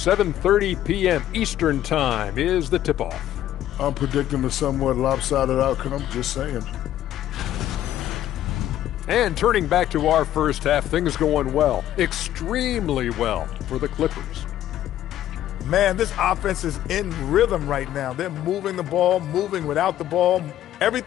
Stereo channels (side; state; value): right; quieter; 12.4 dB